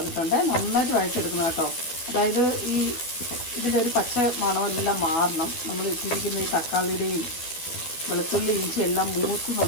നന്നായിട്ട് വഴറ്റിയെടുക്കണം കേട്ടോ. അതായത് ഇതിൻ്റെ ഒരു പച്ച മണമെല്ലാം മാറണം. നമ്മൾ ഇട്ടിരിക്കുന്ന ഈ തക്കാളിയുടെയും വെളുത്തുള്ളി ഇഞ്ചി എല്ലാം മൂത്ത്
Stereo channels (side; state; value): right; late; 12 ms